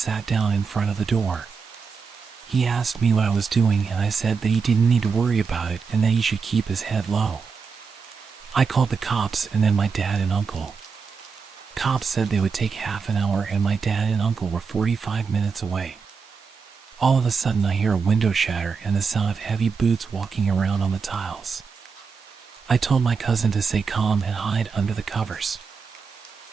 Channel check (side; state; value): left; quieter; 5.4 dB